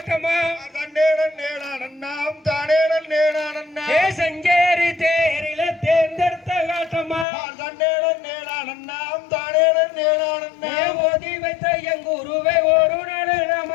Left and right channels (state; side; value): drops out; right; at 7.2 s